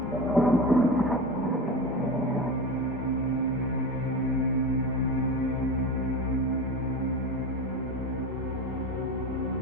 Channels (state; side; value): normal; both; correlation 0.26